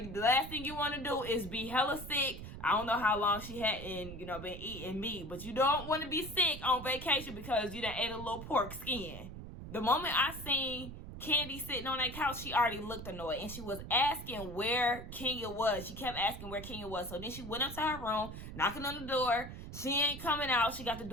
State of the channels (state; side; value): noise; right; rumble, 11 dB below the sound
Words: the last thing you want to do is be hella sick. I don't know how long she hadn't, you know, been eating meat, but you don't want to be sick on vacation because you done ate a little pork skin. The moment I seen Kandi sitting on that couch, she already looked annoyed, and she was asking where Kenya was. She kept asking where Kenya was. So then she went up to her room, knocking on the door. She ain't coming out. She got the